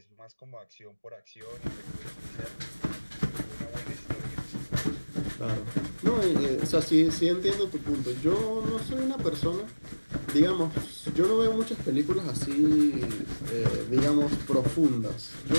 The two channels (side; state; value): both; inverted; correlation -1.00